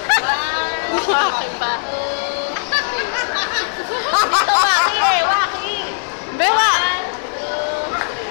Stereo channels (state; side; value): silent; right; digital silence